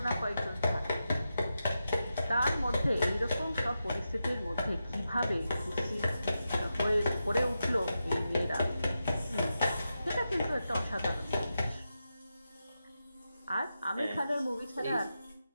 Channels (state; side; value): inverted; both; correlation -0.89